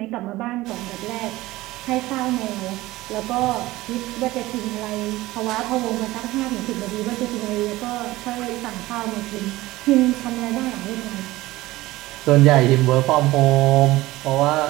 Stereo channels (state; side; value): quieter; left; 18.2 dB